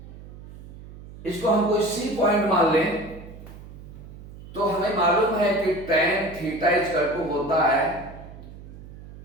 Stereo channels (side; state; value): right; noise; hum, 16 dB below the sound